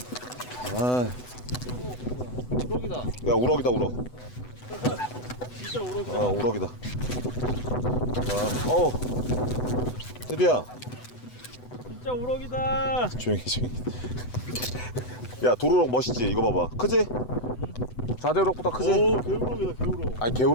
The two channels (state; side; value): late; right; 8.0 ms